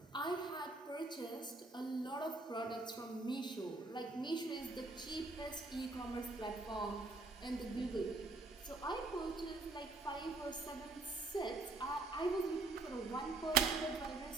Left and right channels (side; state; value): left; quieter; 3.4 dB